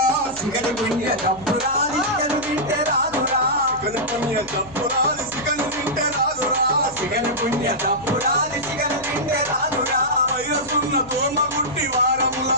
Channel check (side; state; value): left; noise; hum, 21 dB below the sound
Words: సిగలు పుణ్య జప్పురాలి సిగలు తింటే రాదురా సిగలు పుణ్య జప్పురాలి సిగలు తింటే రాదురా సిగలు పుణ్య జప్పురాలి సిగలు తింటే రాదురా వైరసున్న దోమ గుట్టి